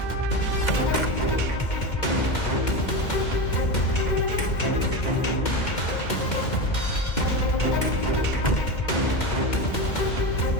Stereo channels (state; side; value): late; right; 2.0 ms